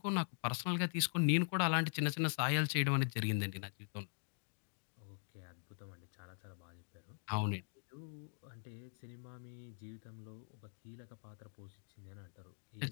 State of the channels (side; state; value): right; silent; digital silence